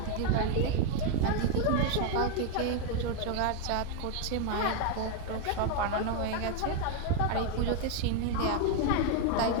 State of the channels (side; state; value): both; different; correlation 0.01